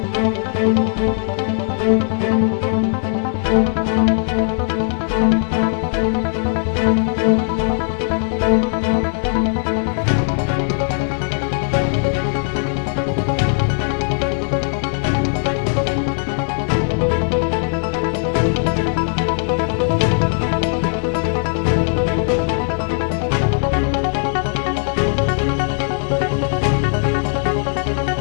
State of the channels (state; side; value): silent; right; digital silence